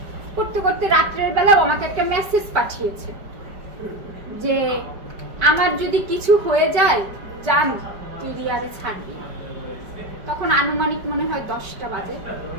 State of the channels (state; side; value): late; left; 5.2 ms